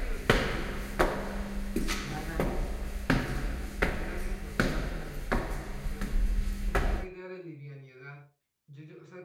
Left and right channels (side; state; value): both; identical; correlation 1.00